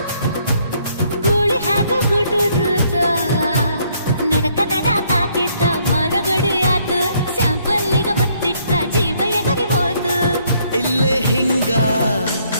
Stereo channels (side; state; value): both; inverted; correlation -0.68